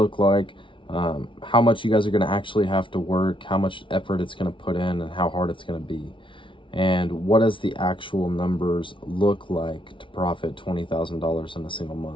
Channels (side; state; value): right; late; 0.25 ms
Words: like, how much you guys are going to actually have to work, how much effort it's going to put in, and how hard it's going to be. And what does the actual numbers look like to profit $20,000 in a single